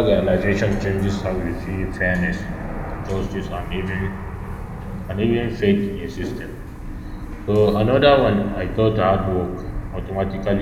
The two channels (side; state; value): both; identical; correlation 1.00